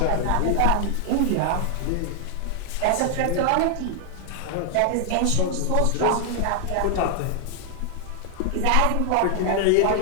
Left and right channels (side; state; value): both; different; correlation 0.00